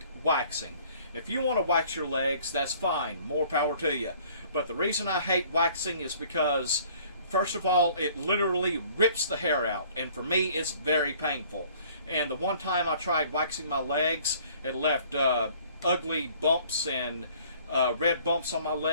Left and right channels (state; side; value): inverted; both; correlation -0.56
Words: waxing. If you want to wax your legs, that's fine. More power to you. But the reason I hate waxing is because, first of all, it literally rips the hair out, and for me, it's very painful. And the one time I tried waxing my legs, it left ugly bumps and red bumps on my